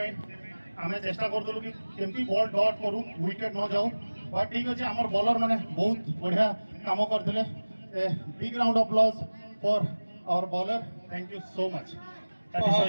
आम चेष्टा करूँ कि केमती बॉल डॉट करूँ विकेट न जाऊँ बट ठीक अच्छे आमर बॉलर मैंने बहुत बढ़िया काम करते big round of applause for our bowler thank you so much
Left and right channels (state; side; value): inverted; both; correlation -1.00